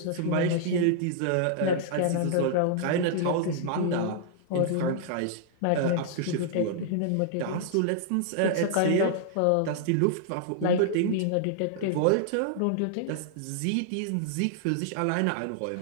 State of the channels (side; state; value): both; different; correlation -0.01